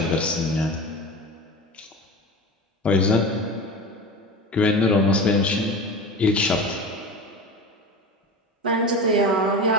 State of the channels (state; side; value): normal; both; correlation 0.30